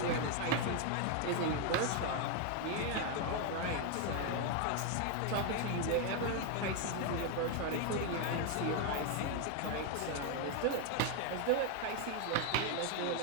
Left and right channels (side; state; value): both; different; correlation 0.01